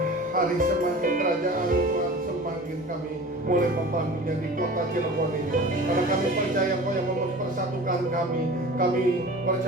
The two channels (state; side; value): normal; both; correlation 0.38